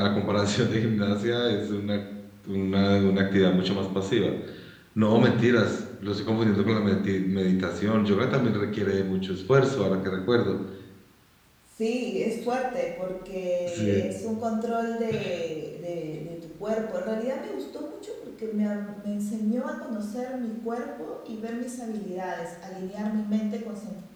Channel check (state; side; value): identical; both; correlation 1.00